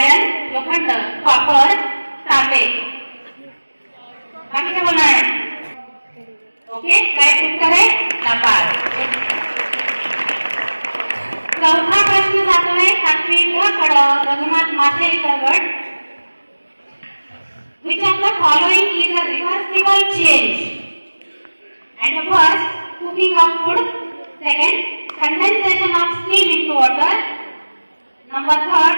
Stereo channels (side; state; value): both; inverted; correlation -1.00